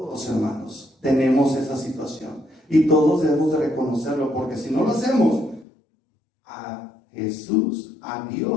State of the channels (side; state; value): right; drops out; at 5.7 s